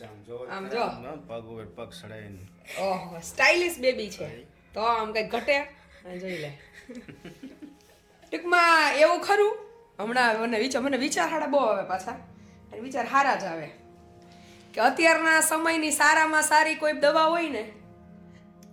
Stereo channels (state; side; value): identical; both; correlation 1.00